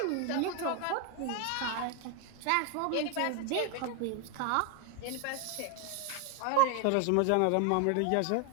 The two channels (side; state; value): both; different; correlation 0.01